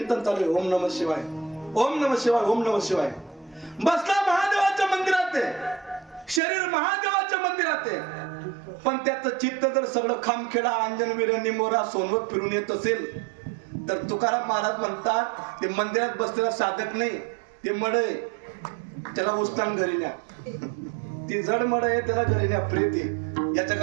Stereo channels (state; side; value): drops out; left; at 6.4 s